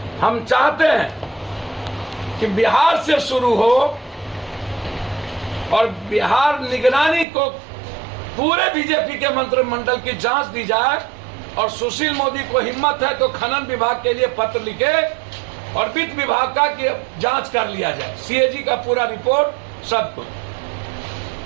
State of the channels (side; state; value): left; drops out; at 7.2 s